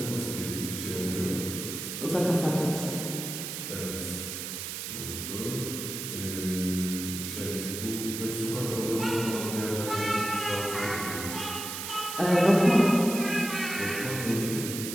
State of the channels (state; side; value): noise; right; hiss, 6 dB below the sound